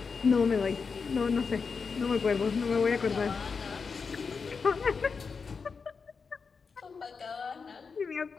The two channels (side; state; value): right; quieter; 5.2 dB